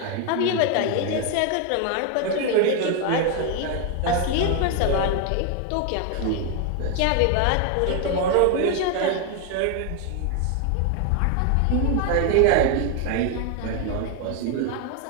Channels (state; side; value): different; both; correlation 0.01